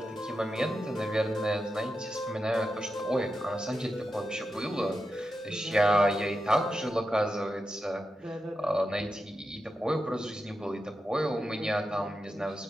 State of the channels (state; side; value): normal; both; correlation 0.89